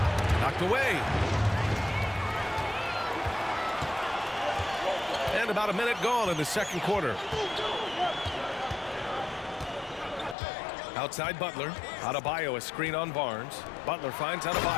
Knocked away. And about a minute gone in the second quarter. Outside Butler. Adebayo, a screen on Barnes. Butler finds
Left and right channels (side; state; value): right; drops out; at 10.4 s